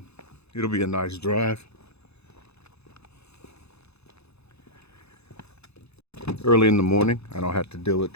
It'll be a nice drive. Early in the morning, I don't have to deal with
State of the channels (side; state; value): right; late; 0.79 ms